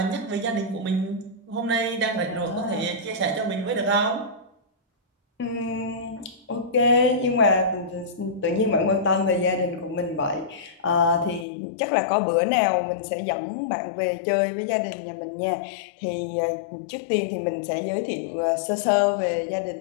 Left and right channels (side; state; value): right; drops out; at 11.5 s